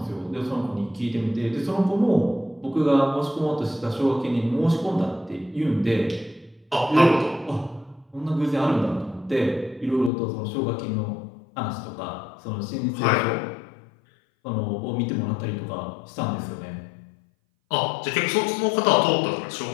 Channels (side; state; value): right; drops out; at 10.1 s